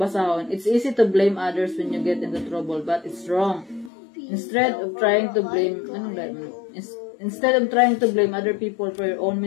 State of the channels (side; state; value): right; drops out; at 3.9 s